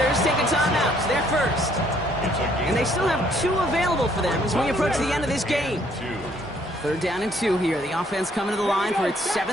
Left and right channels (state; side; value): normal; both; correlation 0.65